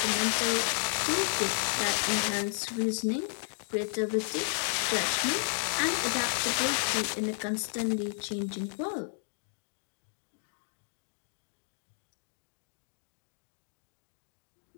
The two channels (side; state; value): right; silent; digital silence